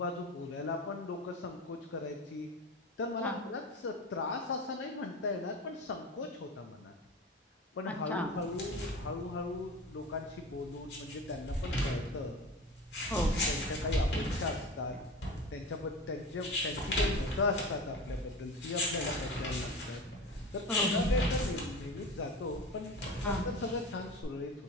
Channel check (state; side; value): normal; both; correlation 0.32